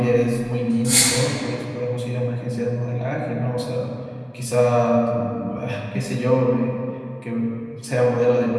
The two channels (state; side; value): identical; both; correlation 1.00